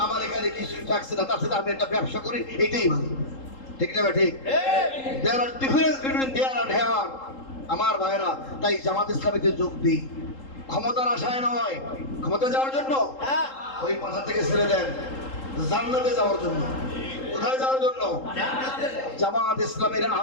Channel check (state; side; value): late; right; 3.8 ms